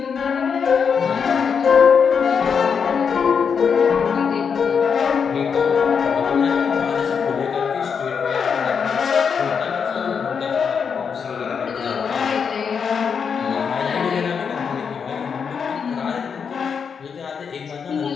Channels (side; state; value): right; quieter; 6.4 dB